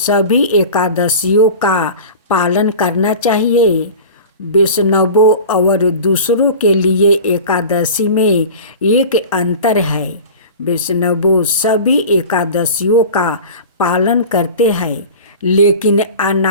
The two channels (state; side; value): inverted; both; correlation -0.36